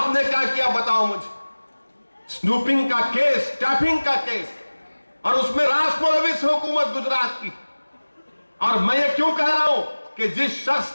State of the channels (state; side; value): inverted; both; correlation -1.00